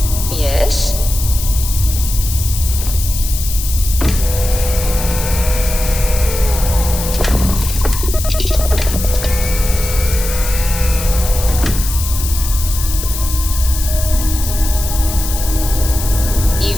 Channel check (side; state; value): left; noise; hiss, 7 dB below the sound